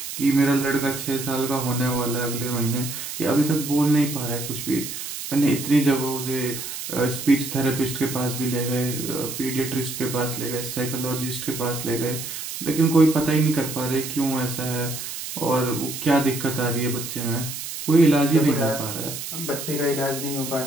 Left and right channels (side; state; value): right; noise; hiss, 7 dB below the sound